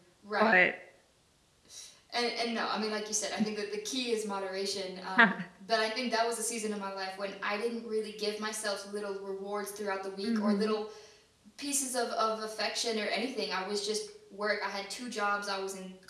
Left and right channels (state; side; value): identical; both; correlation 1.00